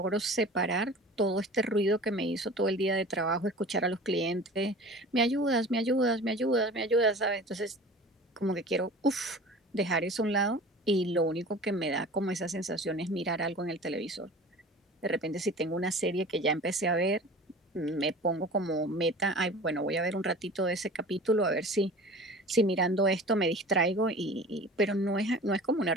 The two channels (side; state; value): both; normal; correlation 0.40